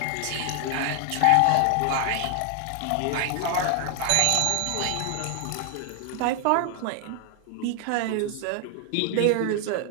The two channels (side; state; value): both; different; correlation 0.00